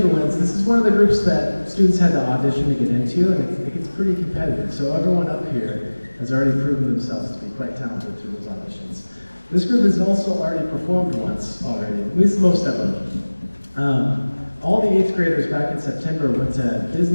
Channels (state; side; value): inverted; both; correlation -1.00